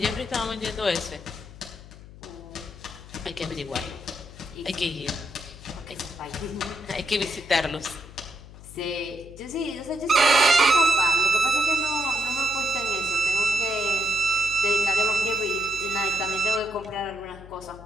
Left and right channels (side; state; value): left; noise; hum, 17 dB below the sound